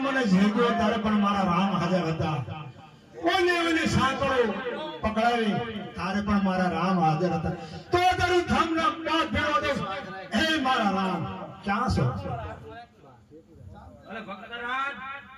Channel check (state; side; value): identical; both; correlation 1.00